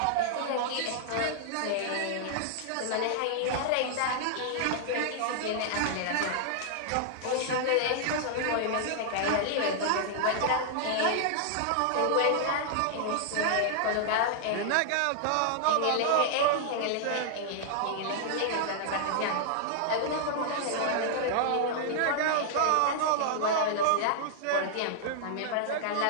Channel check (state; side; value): different; both; correlation -0.01